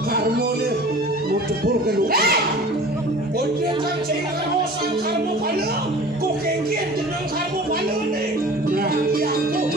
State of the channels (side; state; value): both; normal; correlation 0.42